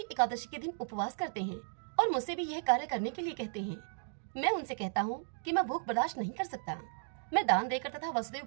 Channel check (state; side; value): silent; left; digital silence